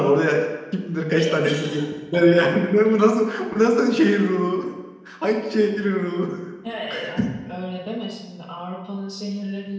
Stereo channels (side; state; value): both; identical; correlation 1.00